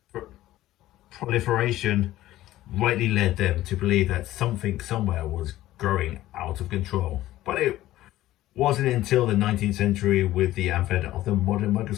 proliferation rightly led them to believe that something somewhere was growing out of control. But it wasn't until the 19th century, with the advent of the modern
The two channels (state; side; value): quieter; right; 15.0 dB